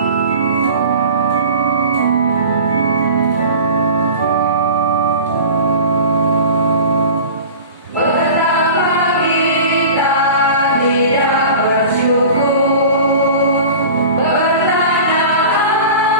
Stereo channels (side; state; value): both; inverted; correlation -0.38